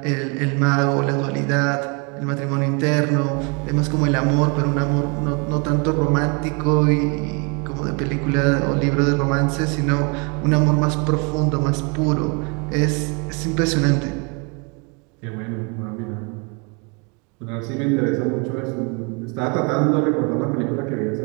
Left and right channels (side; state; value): left; quieter; 32.8 dB